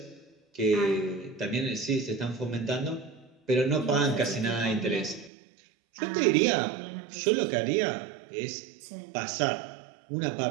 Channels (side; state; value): left; drops out; at 5.3 s